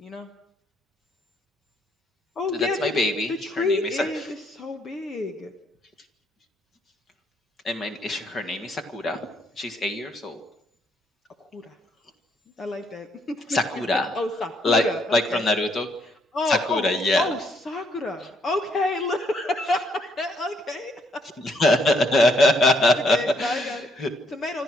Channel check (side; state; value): both; normal; correlation 0.71